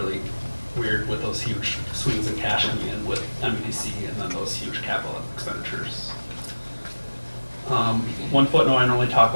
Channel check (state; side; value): inverted; both; correlation -1.00